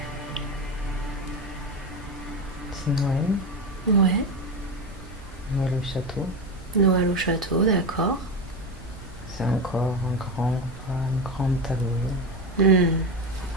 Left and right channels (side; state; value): both; normal; correlation 0.18